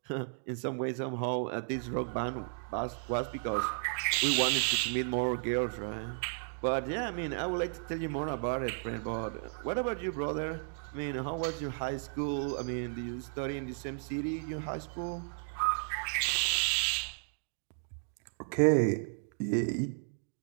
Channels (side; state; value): left; silent; digital silence